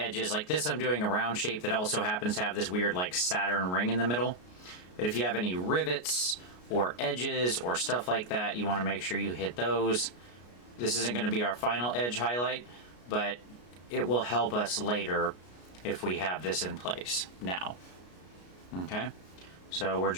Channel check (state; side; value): late; right; 33 ms